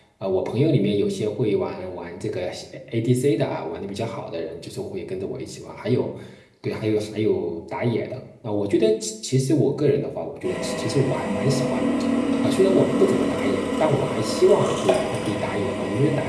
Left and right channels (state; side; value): identical; both; correlation 1.00